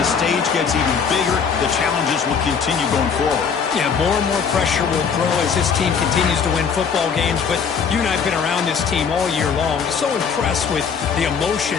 stage gets even bigger. The challenges will continue going forward. Yeah, more and more pressure will grow as this team continues to win football games, but you and I have been around this team all year long. So impressed with the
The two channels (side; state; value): right; quieter; 6.4 dB